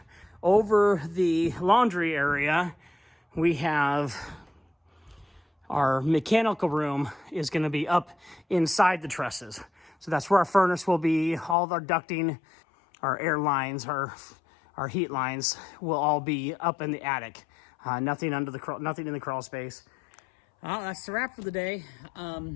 Over the laundry area, we have our mechanical room is going to be up inside the trusses. So that's where our furnace will be. All of our ducting, our air lines, our heat lines will all be up in the attic. Nothing in the crawl space. That's the wrap for the day.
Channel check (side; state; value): right; drops out; at 11.6 s